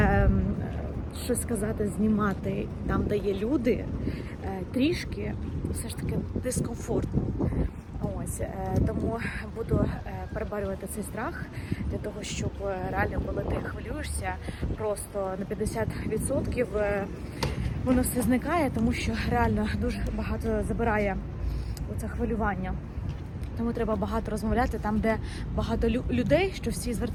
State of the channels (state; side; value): identical; both; correlation 1.00